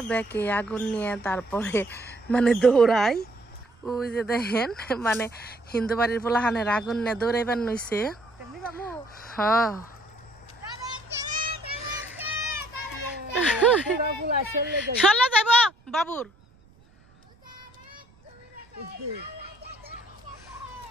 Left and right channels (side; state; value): right; noise; rumble, 29 dB below the sound